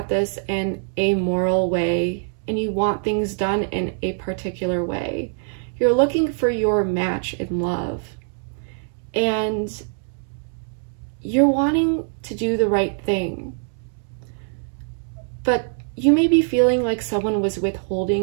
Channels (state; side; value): silent; left; 63 dB below the other